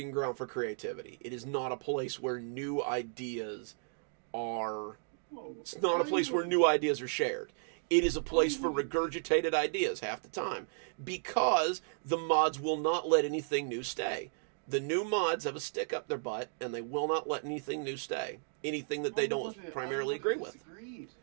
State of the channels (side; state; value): left; silent; digital silence